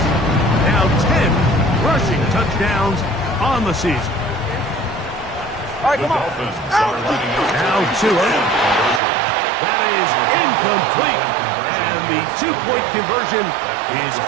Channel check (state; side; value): drops out; left; at 9.0 s